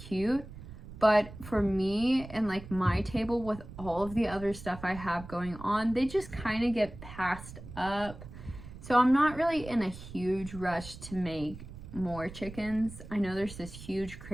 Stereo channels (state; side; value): noise; right; rumble, 14 dB below the sound